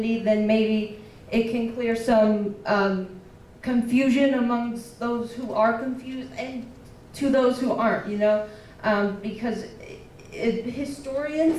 then maybe it can clear some confusion amongst those who are confused and to those who aren't, you know, because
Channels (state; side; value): identical; both; correlation 1.00